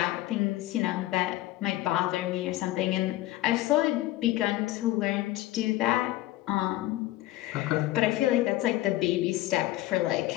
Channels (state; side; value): quieter; right; 16.4 dB